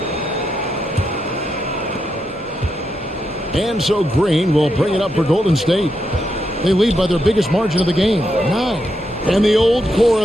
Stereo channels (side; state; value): both; normal; correlation 0.83